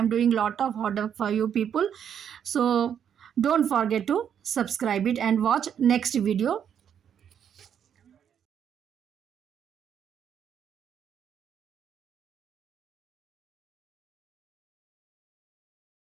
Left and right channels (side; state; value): left; quieter; 8.6 dB